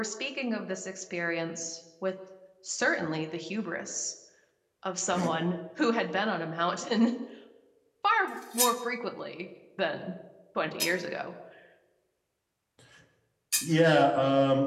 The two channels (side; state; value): both; identical; correlation 1.00